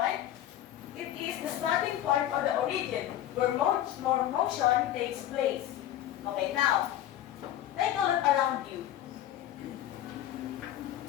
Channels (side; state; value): right; quieter; 12.4 dB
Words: it is the starting point or the origin where motion takes place. Okay, now, take a look around you.